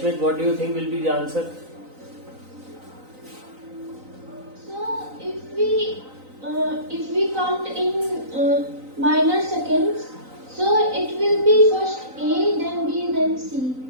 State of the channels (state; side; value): late; left; 3.9 ms